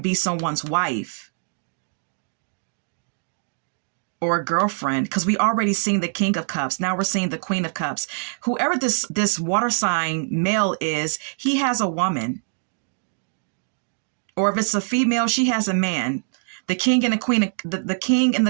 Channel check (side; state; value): left; silent; digital silence